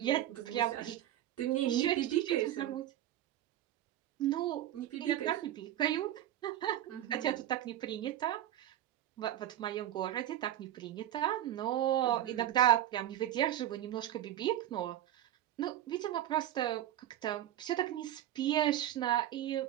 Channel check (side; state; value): left; quieter; 12.4 dB